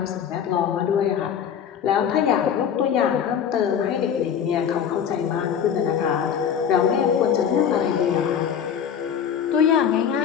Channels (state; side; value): quieter; right; 8.2 dB